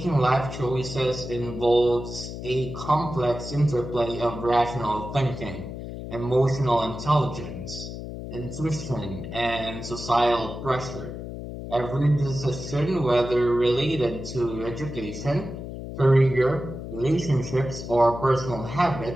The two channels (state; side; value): noise; left; hum, 9 dB below the sound